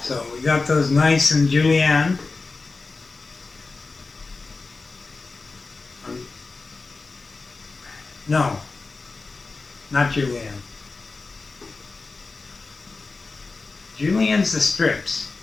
So we got those nice and julienne. No, not julienne. Julienne's the strips.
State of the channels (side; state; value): right; quieter; 3.9 dB